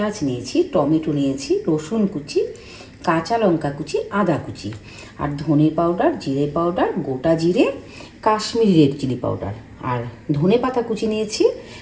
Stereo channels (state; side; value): identical; both; correlation 1.00